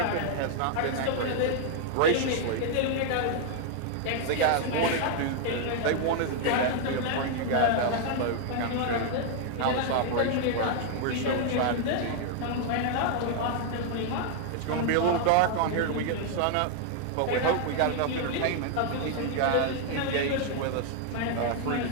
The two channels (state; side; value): different; both; correlation 0.00